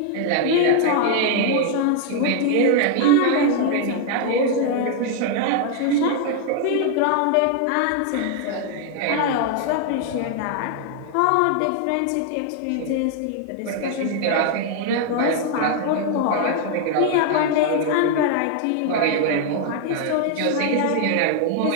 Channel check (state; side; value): different; both; correlation 0.00